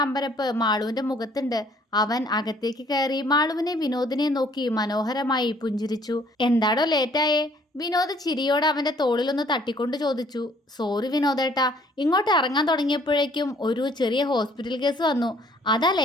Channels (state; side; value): normal; both; correlation 0.60